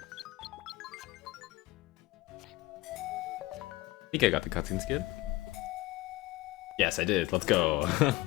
I think I got the cutscene skid. Yes, I did. Let's go.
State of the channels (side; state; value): right; quieter; 18.6 dB